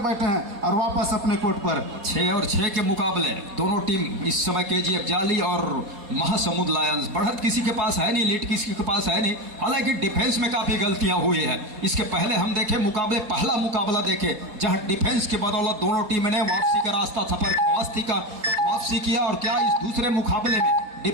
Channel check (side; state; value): left; late; 4.2 ms